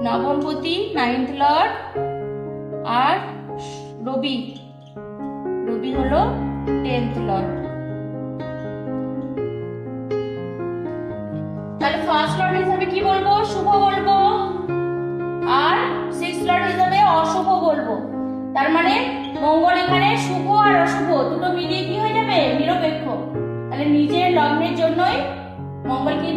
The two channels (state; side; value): identical; both; correlation 1.00